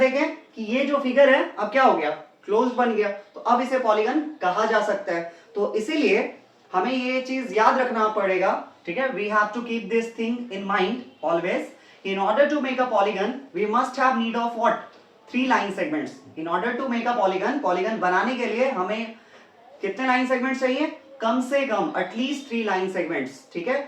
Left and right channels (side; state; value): both; identical; correlation 1.00